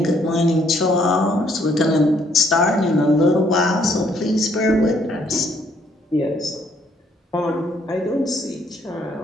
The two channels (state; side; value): normal; both; correlation 0.67